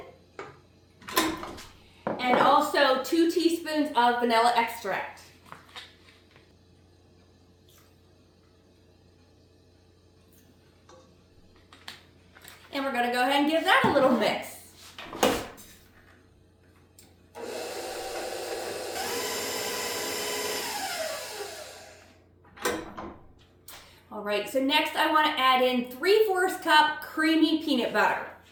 And also 2 teaspoons of vanilla extract. And we're going to go ahead and give that a little mix. All right, so next I want to add in 3/4 cup creamy peanut butter.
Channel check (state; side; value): identical; both; correlation 1.00